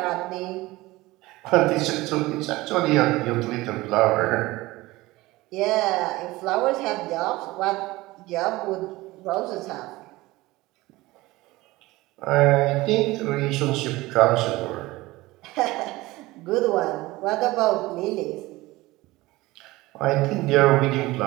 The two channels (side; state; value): left; quieter; 19.6 dB